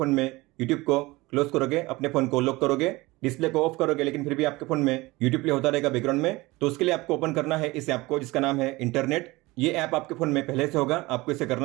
में यूट्यूब को क्लोज करोगे, अपने फोन को लॉक करोगे, डिस्प्ले को ऑफ करोगे लेकिन फिर भी आपके फोन में यूट्यूब प्ले होता रहेगा बैकग्राउंड में, तो उसके लिए आपको ओपन करना है इस ऐप को जिसका नाम है इंटरनेट। ये ऐप आपके फोन में पहले से होगा, आपको इसे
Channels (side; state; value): left; quieter; 21.3 dB